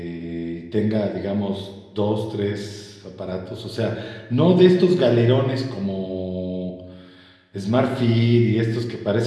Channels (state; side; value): identical; both; correlation 1.00